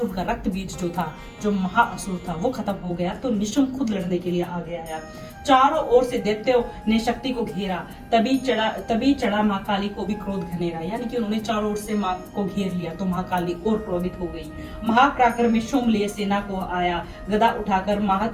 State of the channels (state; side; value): identical; both; correlation 1.00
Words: उनका रक्त बीज जो था, जो महाअसुर था, वो खत्म हो गया तो निशुम्भ खुद लड़ने के लिए आगे आया। चारों ओर से दैत्यों ने शक्ति को घेरा, तभी चढ़ा माँ काली को भी क्रोध घनेरा। यानी कि उन्होंने चारों ओर से माँ को घेर लिया तो माँ काली और क्रोधित हो गई। महाप्राक्रम में शुम्भ लिए सेना को आया, गदा उठाकर